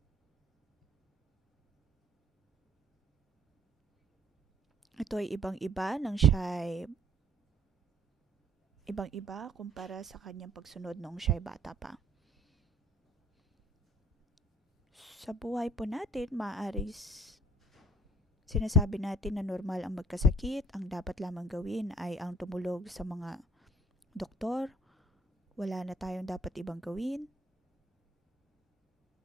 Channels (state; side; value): normal; both; correlation 0.57